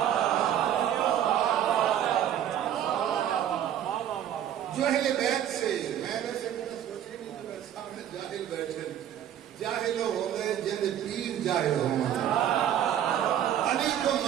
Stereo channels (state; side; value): quieter; left; 10.4 dB